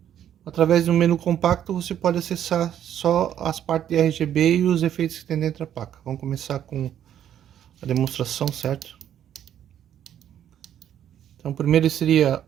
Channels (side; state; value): left; quieter; 10.3 dB